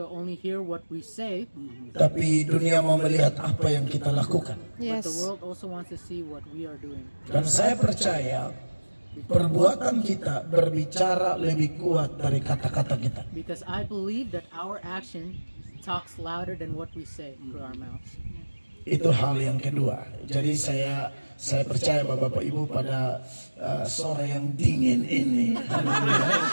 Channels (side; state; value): both; inverted; correlation -1.00